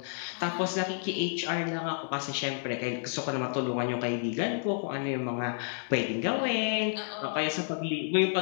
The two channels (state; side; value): silent; right; digital silence